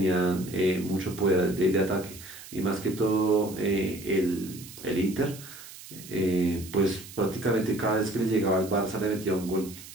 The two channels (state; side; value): noise; right; hiss, 16 dB below the sound